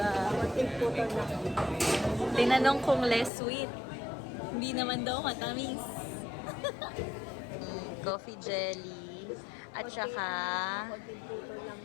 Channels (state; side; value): drops out; right; at 3.3 s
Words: Tinanong kung less sweet. Hindi naman daw matamis. Coffee jelly. At saka